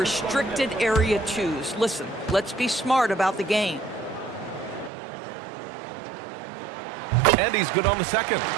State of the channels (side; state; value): left; drops out; at 4.9 s